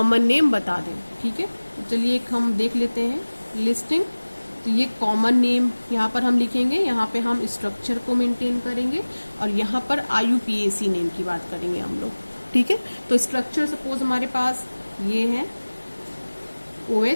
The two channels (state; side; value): inverted; both; correlation -1.00